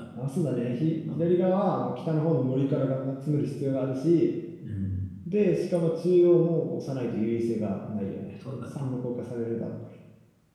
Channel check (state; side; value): identical; both; correlation 1.00